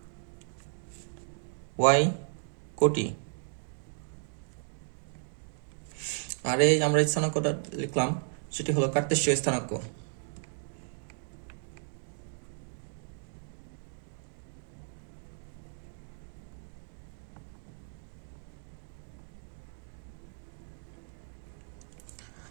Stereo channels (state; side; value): silent; left; digital silence